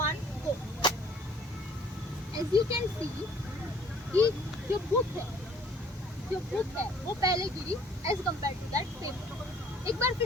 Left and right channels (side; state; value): both; normal; correlation 0.56